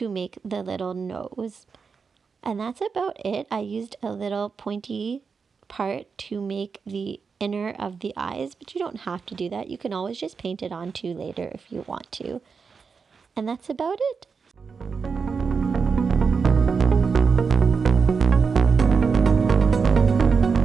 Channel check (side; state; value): left; quieter; 5.4 dB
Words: make the little nose. And that's about it. I used a little pointy part to make the inner of the eyes, but you don't have to do that. You can always just paint it on too later if you want to. And that's about it.